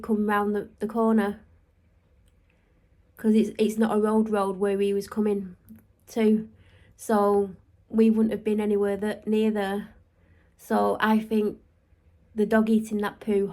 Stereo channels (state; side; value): identical; both; correlation 1.00